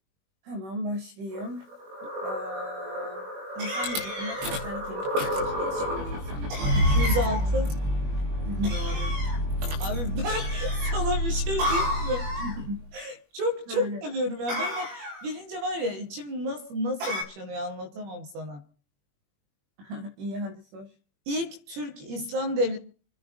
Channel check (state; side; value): late; left; 21 ms